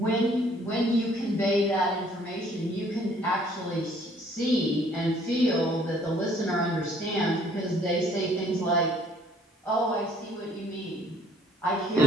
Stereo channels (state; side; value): normal; both; correlation 0.60